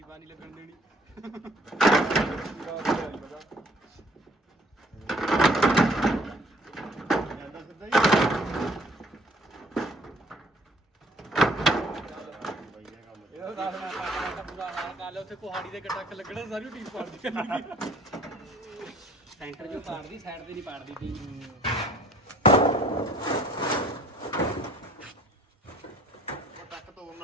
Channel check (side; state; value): both; normal; correlation 0.58